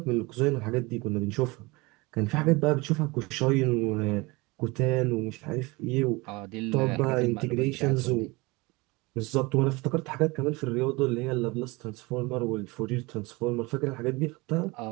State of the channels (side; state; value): left; quieter; 24.3 dB